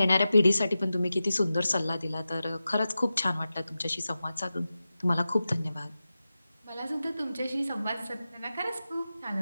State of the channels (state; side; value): inverted; both; correlation -0.93